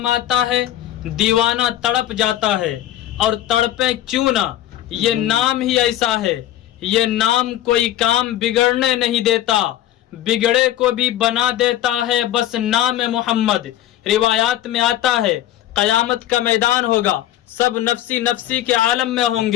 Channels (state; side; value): quieter; right; 13.0 dB